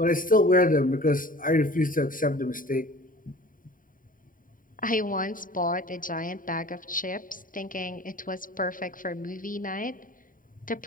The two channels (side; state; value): right; late; 0.40 ms